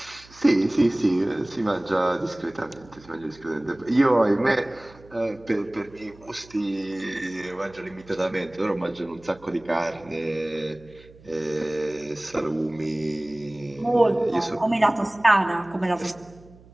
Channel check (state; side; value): noise; right; hum, 24 dB below the sound